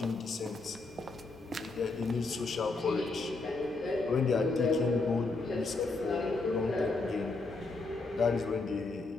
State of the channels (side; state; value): right; quieter; 3.5 dB